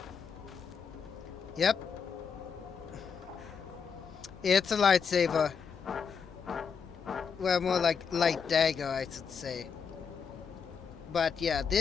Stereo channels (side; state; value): right; quieter; 6.3 dB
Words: Yep. It's a lightsaber. Well, more like light dagger, I should say. But yeah,